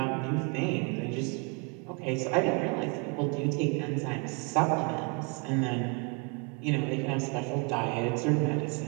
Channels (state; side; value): quieter; left; 33.3 dB